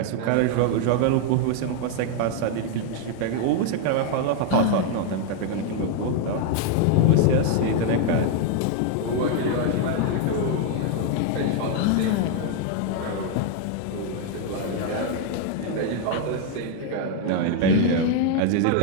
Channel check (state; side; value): different; both; correlation 0.00